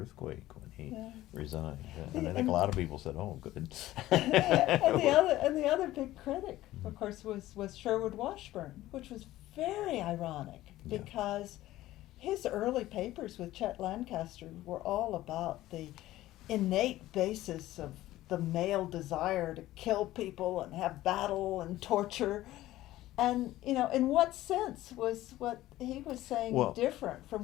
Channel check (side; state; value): right; quieter; 15.6 dB